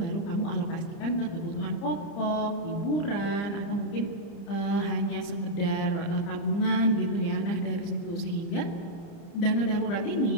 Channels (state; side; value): late; right; 30 ms